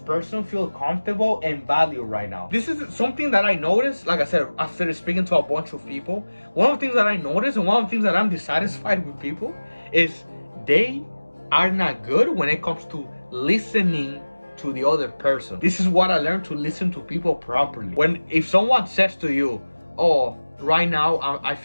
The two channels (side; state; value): both; inverted; correlation -1.00